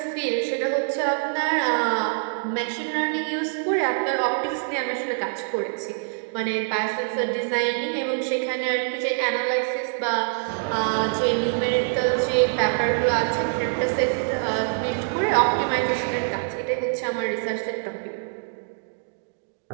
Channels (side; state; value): left; silent; digital silence